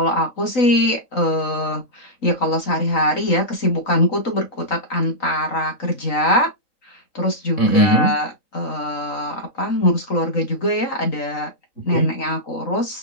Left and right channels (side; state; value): right; late; 3.9 ms